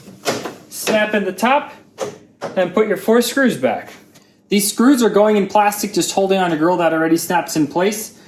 snap in the top, and put your 4 screws back. These screws are going in plastic, just holding on a grill that already snaps in place,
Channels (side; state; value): both; identical; correlation 1.00